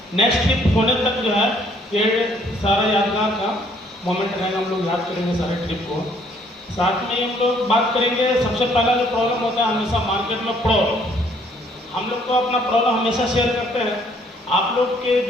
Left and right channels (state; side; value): normal; both; correlation 0.64